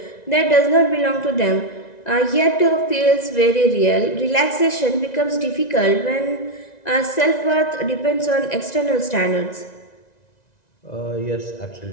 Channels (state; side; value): late; right; 1.9 ms